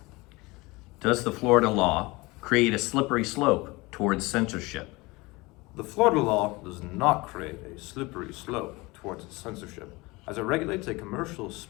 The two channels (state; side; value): quieter; right; 23.3 dB